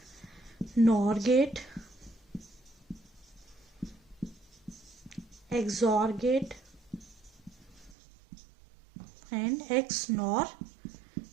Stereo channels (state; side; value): drops out; left; at 8.0 s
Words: NOR gate, XOR gate and XNOR